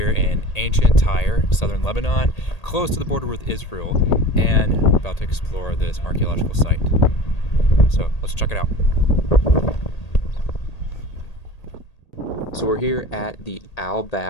in ancient Tyre, southern Lebanon, close to the border with Israel, and about to explore this archaeological site. So let's check it out. So we're here at the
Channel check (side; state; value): right; late; 1.8 ms